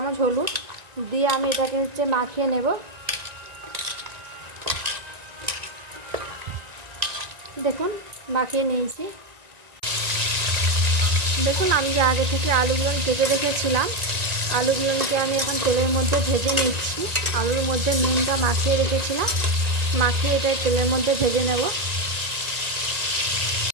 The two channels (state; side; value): late; left; 1.9 ms